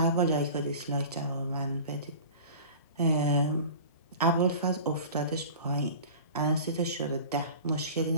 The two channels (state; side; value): inverted; both; correlation -0.38